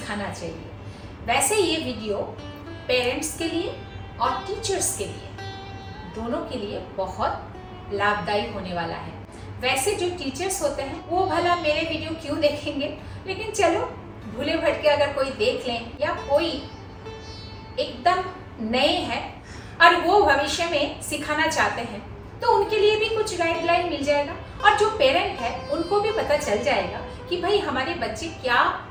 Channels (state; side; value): identical; both; correlation 1.00